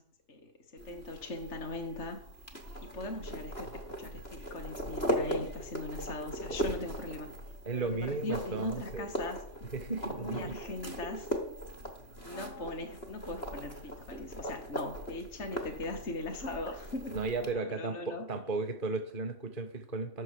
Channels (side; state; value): right; late; 3.0 ms